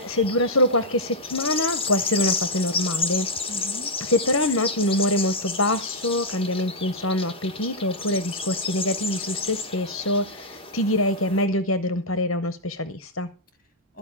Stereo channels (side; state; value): both; normal; correlation -0.04